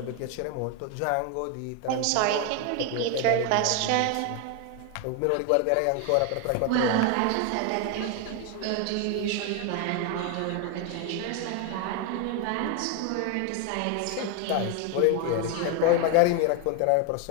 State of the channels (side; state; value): both; different; correlation 0.01